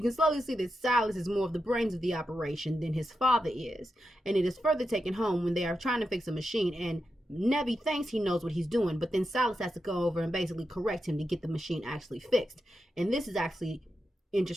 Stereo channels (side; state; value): both; normal; correlation 0.88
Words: can slowly see that Silas is more of the brains of the operation than his father is. And it is further taken home when they are trying to fix a machine, and Nevi thinks he knows what he's doing, but then Silas has to go over and basically correct him to get the machine actually fixed. And this is actually